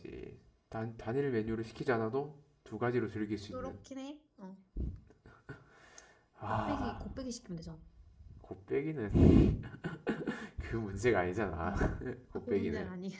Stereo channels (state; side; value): identical; both; correlation 1.00